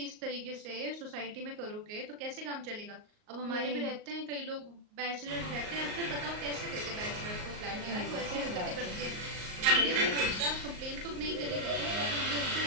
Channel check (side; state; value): left; late; 38 ms